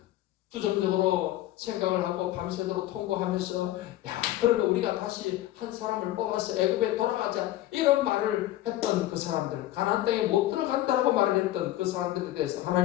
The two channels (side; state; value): right; quieter; 14.8 dB